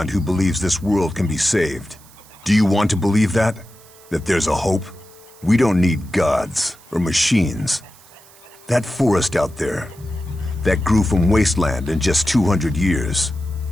who believes this world can be saved. Do you want to believe that? That there's a hope? We don't need gods or machines. That forest out there, that grew from wasteland in just 200 years,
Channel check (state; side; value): noise; right; hiss, 25 dB below the sound